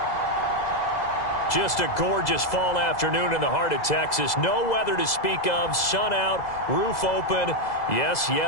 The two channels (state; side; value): late; right; 2.0 ms